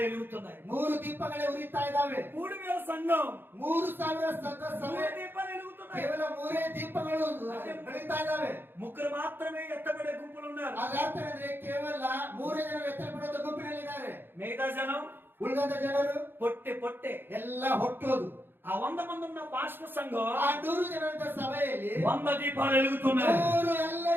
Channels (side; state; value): left; late; 0.10 ms